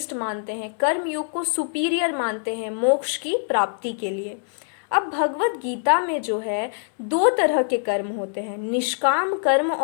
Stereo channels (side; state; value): right; silent; digital silence